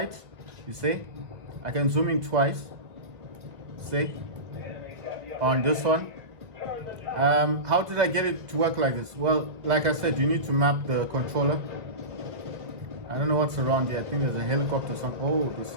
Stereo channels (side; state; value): left; late; 1.9 ms